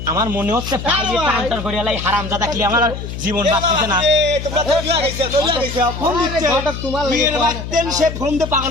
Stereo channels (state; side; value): noise; left; hum, 8 dB below the sound